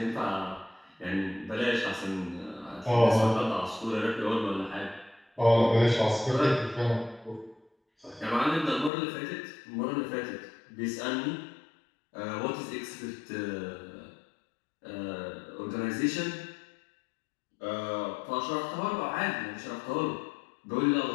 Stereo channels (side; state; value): right; drops out; at 8.9 s